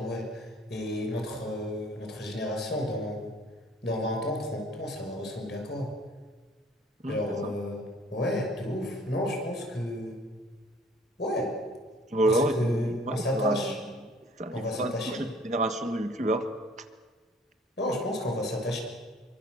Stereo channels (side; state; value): both; normal; correlation 0.54